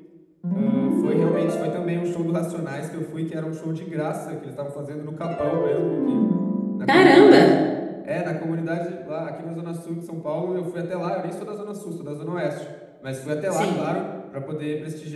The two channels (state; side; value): identical; both; correlation 1.00